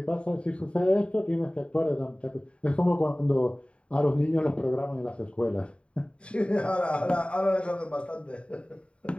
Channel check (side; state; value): right; late; 0.060 ms